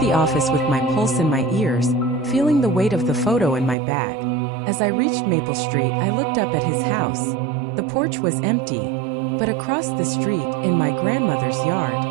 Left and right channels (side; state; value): left; drops out; at 3.8 s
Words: office with my pulse in my ears, feeling the weight of the photo in my bag. As I reached Maple Street, I looked up at his house. The porch was empty, but across the street, in my grandmother's yard,